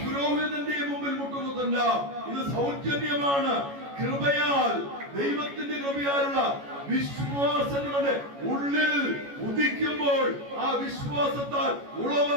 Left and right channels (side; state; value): left; late; 14 ms